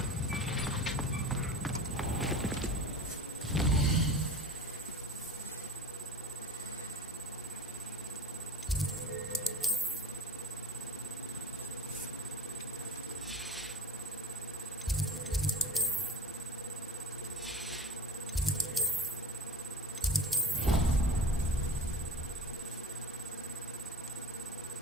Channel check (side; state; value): both; normal; correlation 0.35